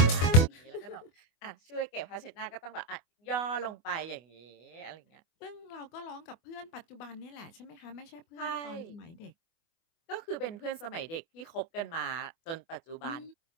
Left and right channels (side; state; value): right; late; 24 ms